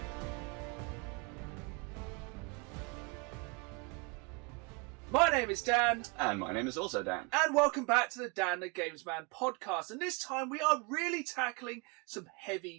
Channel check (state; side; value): quieter; left; 30.2 dB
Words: My name is Dan. And my name is also Dan. And welcome back to the Dan the Games Man podcast. And this time we are really tackling some